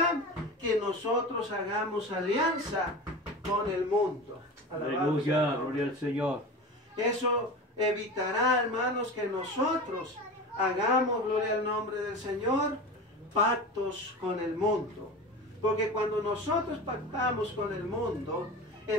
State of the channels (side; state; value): both; normal; correlation 0.30